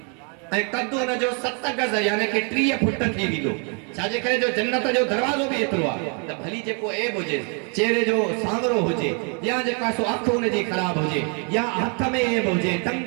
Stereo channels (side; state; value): left; quieter; 37.6 dB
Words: ऐं कद उन जो 7 गज यानी कि 30 फुट थी वेंदो छाजे करे जो जन्नत जो दरवाज़ो बि एतिरो आहे त भली जेको ऐब हुजे चेहरे जो सांवरो हुजे या जेका सो अख उन जी ख़राब हुजे या हथ में ऐब हुजे टंग